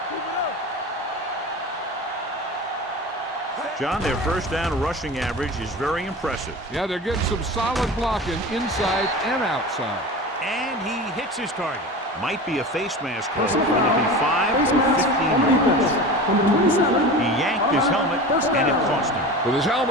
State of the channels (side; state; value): both; normal; correlation 0.32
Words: John, their first down rushing average is very impressive. Yeah, they're getting some solid blocking inside and outside. And he hits his target. Might be a face mask call. Will it be 5 Face or mask 15 on defense. yards? Number 27. He yanked his helmet, and it cost him. With his